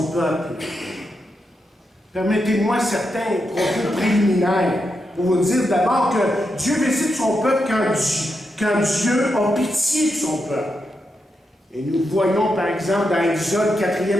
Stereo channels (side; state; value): both; normal; correlation 0.85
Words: peuple? Permettez-moi certains propos préliminaires pour vous dire d'abord que Dieu visite son peuple quand Dieu a pitié de son peuple. Et nous voyons par exemple dans Exode